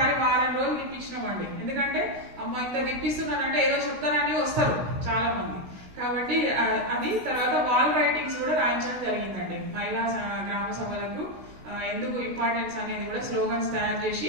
వారం రోజులు తిప్పించినామండి. ఎందుకంటే అమ్మ ఇంత తిప్పిస్తున్నారంటే ఏదో చెప్తారని వస్తారు చాలా మంది. కాబట్టి అది తర్వాత వాల్ రైటింగ్స్ కూడా రాయించడం జరిగిందండి. మహిళా గ్రామ సభలకు ఎందుకు ఇంపార్టెన్స్ అనేది కూడా స్లోగన్స్ తయారు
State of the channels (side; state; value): left; late; 16 ms